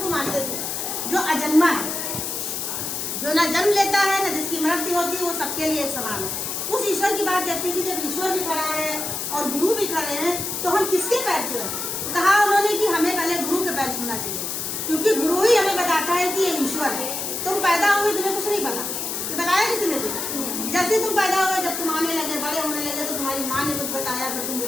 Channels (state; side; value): noise; left; hiss, 3 dB below the sound